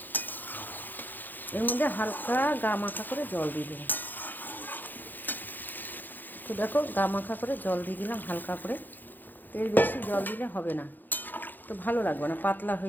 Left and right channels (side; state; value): right; late; 0.088 ms